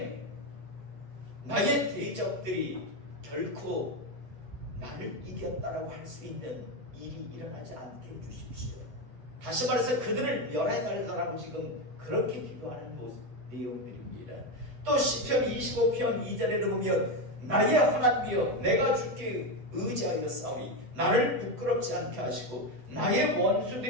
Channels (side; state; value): left; late; 7.9 ms